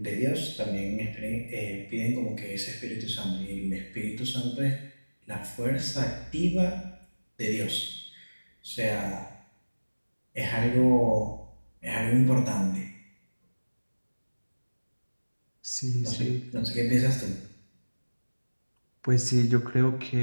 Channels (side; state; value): both; inverted; correlation -1.00